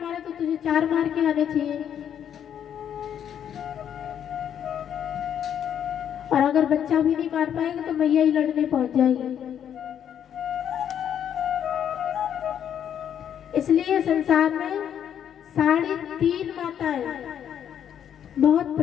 तो तुझे 4 मार के आने चाहिए। और अगर बच्चा भी नहीं मार पाएगा तो मैया ही लड़ने पहुंच जाएगी। इसलिए संसार में 3.5 माताएं बहुत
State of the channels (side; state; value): right; quieter; 9.2 dB